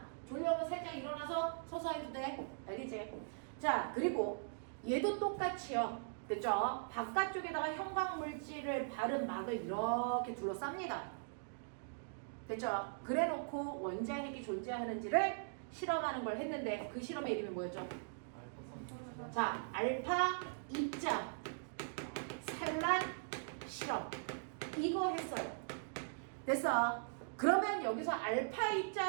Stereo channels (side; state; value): left; silent; digital silence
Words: 졸려면 살짝 일어나서 서서 해도 돼. 알겠지? 자, 그리고 얘도 똑같이요. 됐죠? 바깥쪽에다가 형광물질을 바른 막을 이렇게 둘러쌉니다. 됐죠? 그래놓고 원자핵이 존재하는지를 실험하는 걸 했는데 그 실험의 이름이 뭐였죠? 자, 알파 입자 산란 실험, 이거 했어요. 됐어? 그러면 여기서 알파